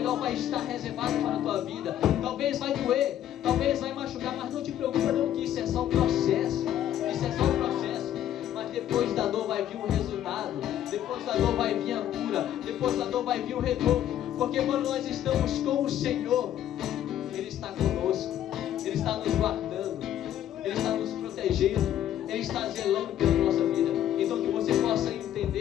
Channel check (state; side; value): quieter; right; 11.4 dB